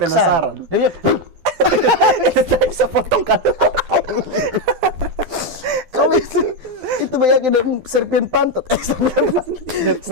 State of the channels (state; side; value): late; left; 12 ms